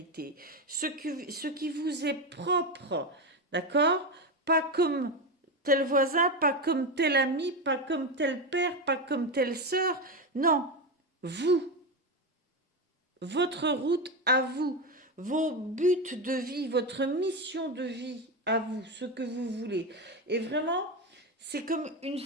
ce qui vous est propre, d'accord? Pas comme tel voisin, pas comme tel ami, pas comme tel père, pas comme telle sœur. Non, vous. Votre route à vous, vos buts de vie, votre mission de vie à vous, ce que vous voulez. Et vraiment, c'est comme une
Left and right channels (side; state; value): both; normal; correlation 0.15